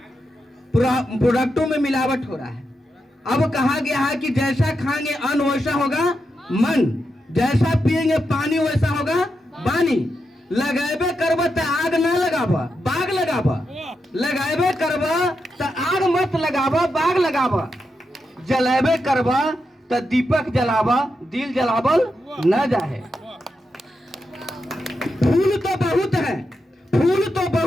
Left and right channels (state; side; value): normal; both; correlation 0.86